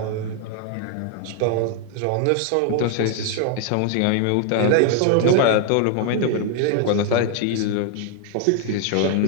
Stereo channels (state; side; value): different; both; correlation 0.00